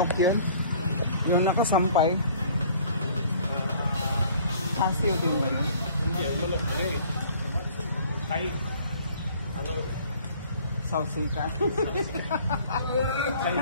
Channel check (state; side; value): inverted; both; correlation -0.54